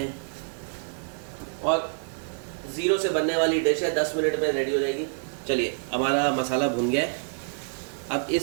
और ज़ीरो से बनने वाली डिश है. 10 मिनट में रेडी हो जाएगी. चलिए, हमारा मसाला भुन गया है. अब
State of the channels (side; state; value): left; silent; digital silence